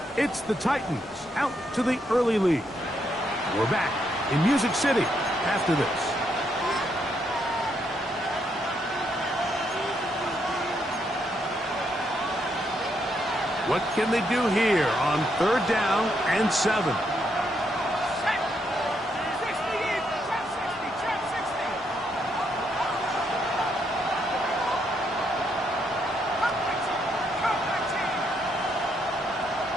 It's the Titans out to the early lead. We're back in Music City after this. What can they do here on 3rd down and 7?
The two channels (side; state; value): both; normal; correlation 0.76